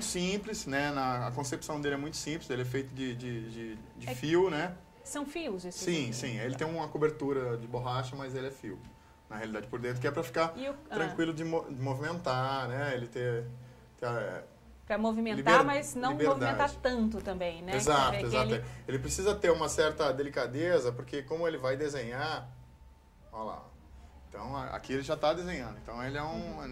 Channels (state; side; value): identical; both; correlation 1.00